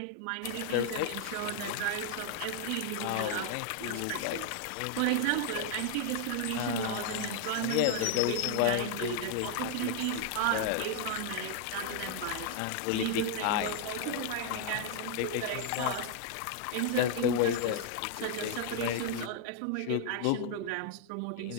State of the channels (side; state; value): both; different; correlation 0.00